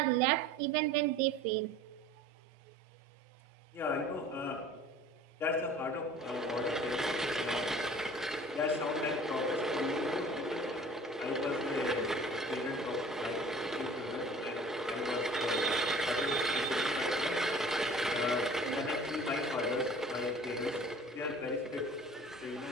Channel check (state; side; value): normal; both; correlation 0.47